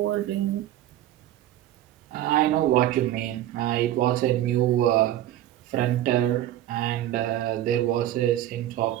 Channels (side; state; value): left; quieter; 13.2 dB